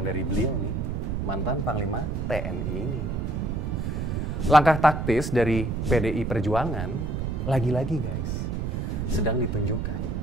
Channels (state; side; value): noise; right; rumble, 2 dB below the sound